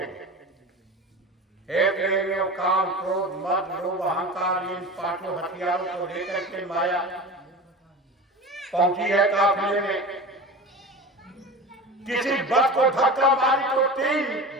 हे प्रेमियों, काम क्रोध मद लोभ अहंकार इन पांचों हथियारों को लेकर के माया पहुंची है काफिले में। किसी बस को धक्का मारी तो 3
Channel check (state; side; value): normal; both; correlation 0.32